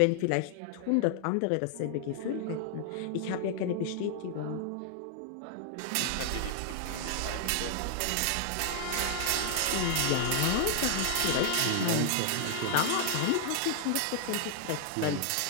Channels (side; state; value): both; different; correlation 0.00